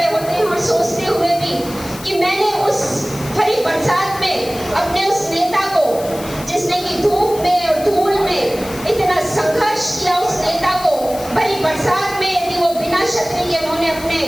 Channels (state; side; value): noise; left; hiss, 15 dB below the sound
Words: होते हैं और सोचते हुए भी कि मैंने उस भरी बरसात में अपने उस नेता को, जिसने की धूप में और धूल में इतना संघर्ष किया, उस नेता को भरी बरसात में यदि वो बिना छतरी के, उन्होंने अपने